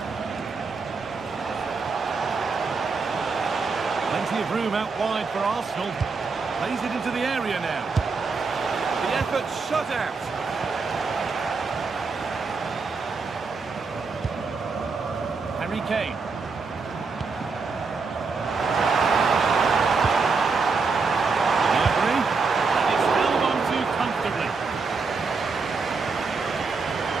Plenty of room out wide for Arsenal. Plays it into the area now. The effort shut out. Harry Kane. Gnabry, and it's held on to comfortably.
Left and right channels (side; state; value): left; quieter; 4.6 dB